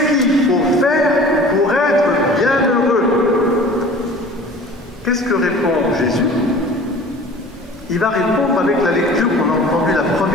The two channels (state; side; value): normal; both; correlation 0.44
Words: qu'il faut faire pour être bienheureux? Qu'est-ce que répond Jésus? Il va répondre avec la lecture qu'on a entendue, la